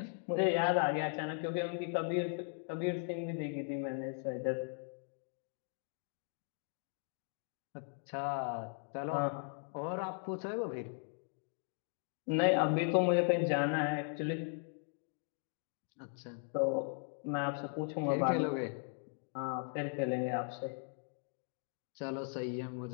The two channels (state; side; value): silent; right; 52 dB below the other